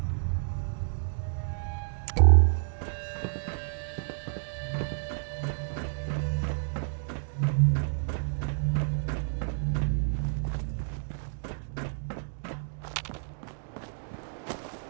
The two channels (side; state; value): left; silent; digital silence